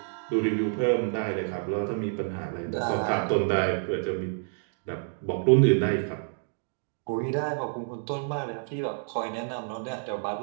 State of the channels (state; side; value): silent; left; 59 dB below the other